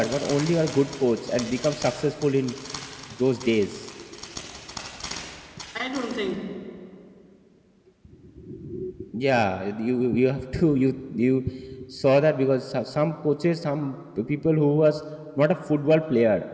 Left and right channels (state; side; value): identical; both; correlation 1.00